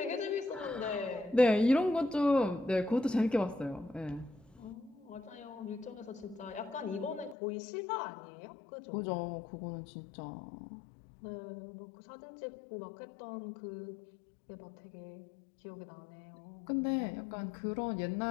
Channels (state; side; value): drops out; right; at 7.4 s